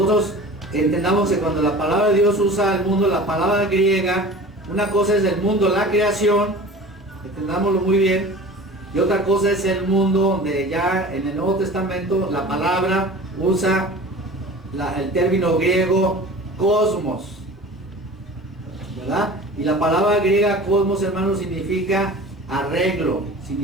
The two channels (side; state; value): both; normal; correlation 0.39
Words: entendamos que cuando la palabra de Dios usa el mundo, la palabra griega, una cosa es el mundo, la creación, entendámoslo muy bien, y otra cosa es el mundo donde ya en el Nuevo Testamento la palabra usa el término griego cosmos, ¿verdad? Y la palabra griega cosmos, hermanos, significa arreglo,